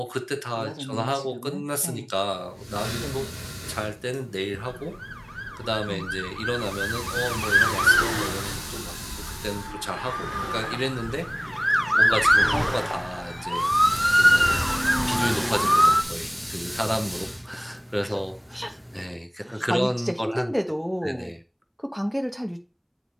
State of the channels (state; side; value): identical; both; correlation 1.00